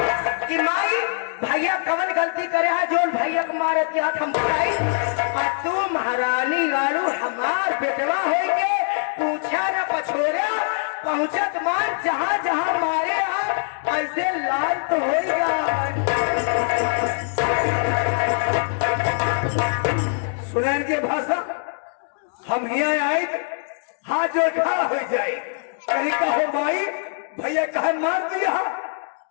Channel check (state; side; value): silent; right; 64 dB below the other